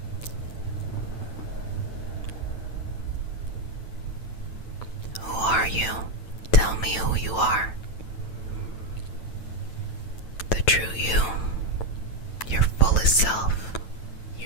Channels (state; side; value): late; right; 9.0 ms